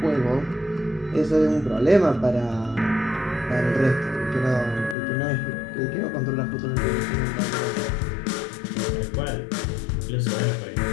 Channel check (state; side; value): drops out; right; at 5.0 s